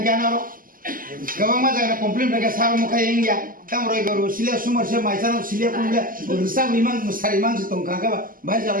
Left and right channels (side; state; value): left; late; 0.41 ms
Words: ro. Gawang ma jaga complain phaga sar mo khai ingya. Tam roibar bo silia sumber se maisano silia kumbia. Risam liman musariman se tong hangkai ba. Bhai